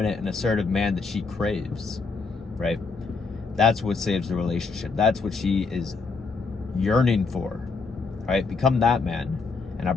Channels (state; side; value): quieter; right; 4.4 dB